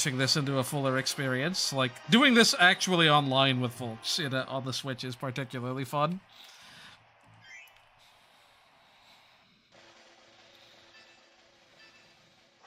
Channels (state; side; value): identical; both; correlation 1.00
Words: this into a fuller experience. Like, doing this actually online with folks on the Switch is particularly fun.